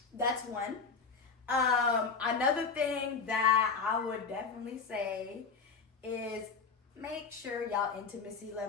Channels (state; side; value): quieter; right; 5.1 dB